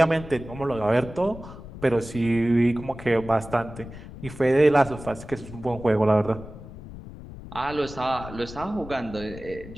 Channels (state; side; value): noise; left; rumble, 14 dB below the sound